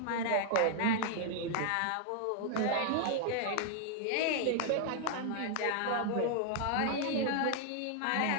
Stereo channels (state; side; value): different; both; correlation 0.00